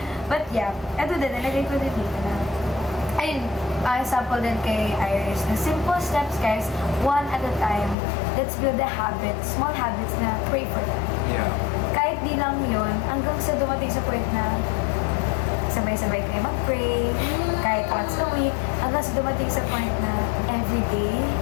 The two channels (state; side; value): drops out; right; at 8.0 s